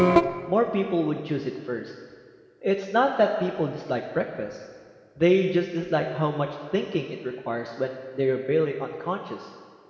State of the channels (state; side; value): identical; both; correlation 1.00